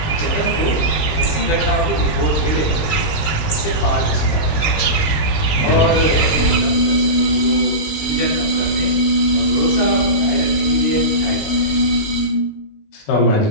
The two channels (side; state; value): right; late; 19 ms